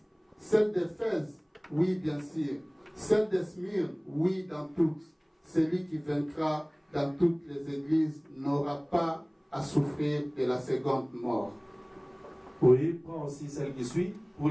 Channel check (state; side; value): identical; both; correlation 1.00